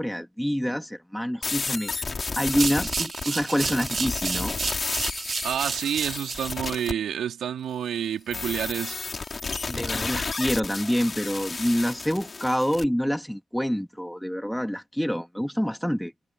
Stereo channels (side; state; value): both; normal; correlation 0.93